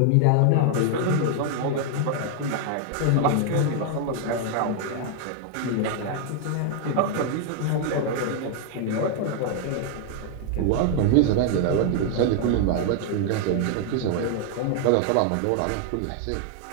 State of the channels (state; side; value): different; both; correlation 0.00